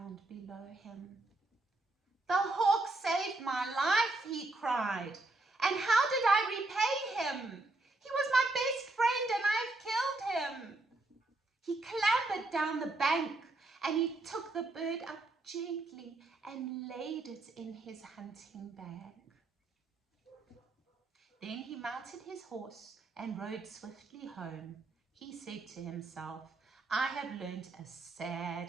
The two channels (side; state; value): left; quieter; 3.0 dB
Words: below him. "The hawk saved my life," he cried. "And how did I repay him? He was my best friend, and I've killed him." He clambered down the bank, and he took the bird up gently and laid it in his hunting bag. Then he mounted his horse and rode swiftly home. He said to himself, "I have learned a